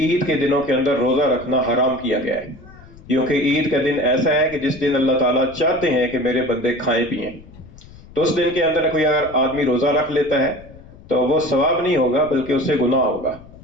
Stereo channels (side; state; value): left; noise; rumble, 20 dB below the sound